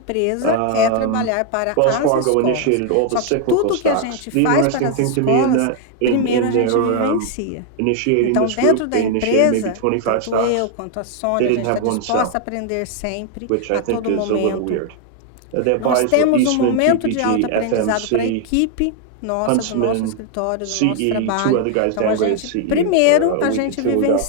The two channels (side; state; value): both; different; correlation 0.00